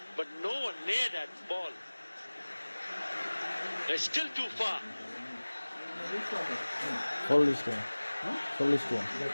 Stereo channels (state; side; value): inverted; both; correlation -1.00